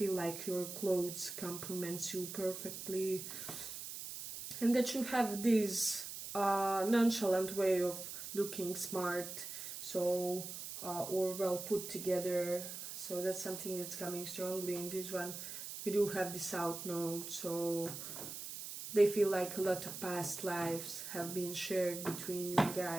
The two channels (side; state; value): right; noise; hiss, 8 dB below the sound